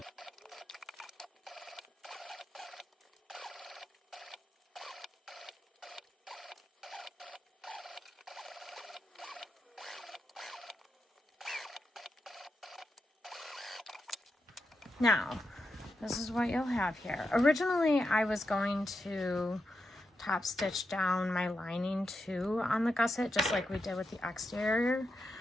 Now, this is what you'll have here. Originally, I was going to top stitch down my lining too on the gusset, just like we did with the exterior.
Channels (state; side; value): normal; both; correlation 0.86